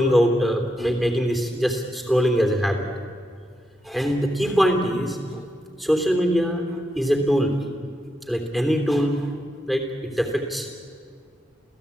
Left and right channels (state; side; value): normal; both; correlation 0.83